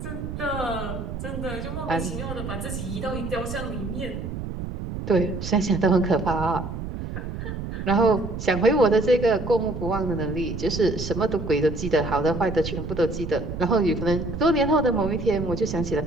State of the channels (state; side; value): noise; right; rumble, 6 dB below the sound